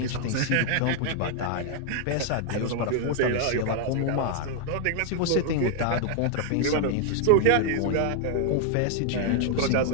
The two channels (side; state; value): both; different; correlation 0.00